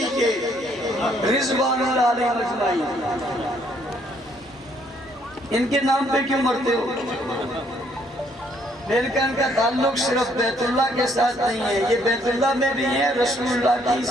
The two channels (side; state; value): both; normal; correlation 0.67